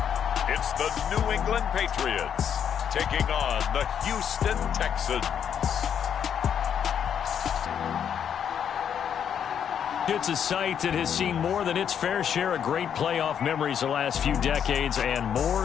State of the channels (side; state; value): right; quieter; 8.4 dB